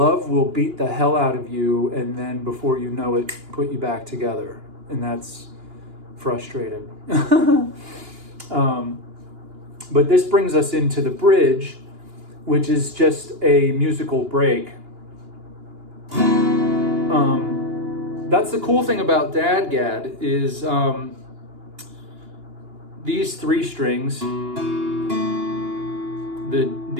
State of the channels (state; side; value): late; left; 2.9 ms